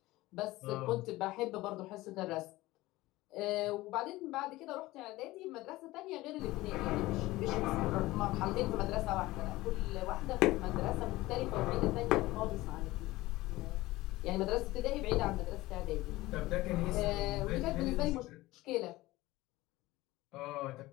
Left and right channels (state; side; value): quieter; right; 18.6 dB